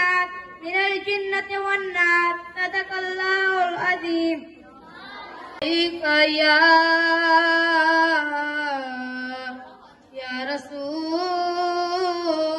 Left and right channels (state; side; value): identical; both; correlation 1.00